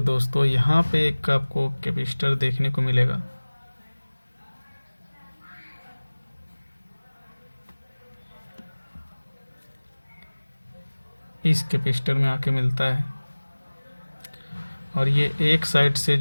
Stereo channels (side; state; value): both; inverted; correlation -1.00